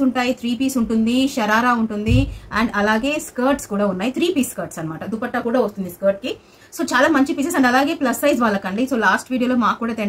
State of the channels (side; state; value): both; identical; correlation 1.00